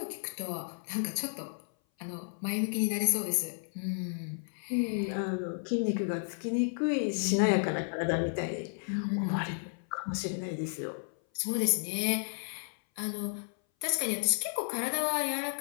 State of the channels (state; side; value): silent; right; 56 dB below the other